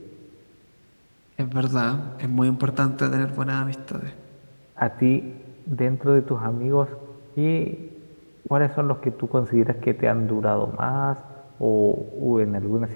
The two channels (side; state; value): both; inverted; correlation -1.00